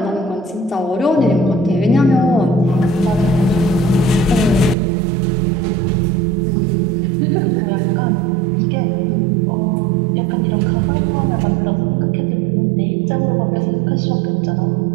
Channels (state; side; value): drops out; left; at 4.8 s